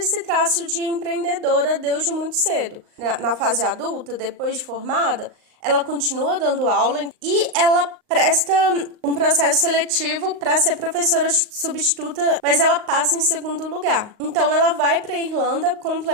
traço de empreendedora desde muito cedo. Na fase adulta, depois de formada, ela continua dando aula e ela presta um processo seletivo para ser professora substituta, mas ela passa em segundo lugar. Então ela vai para a Irlanda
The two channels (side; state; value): left; late; 38 ms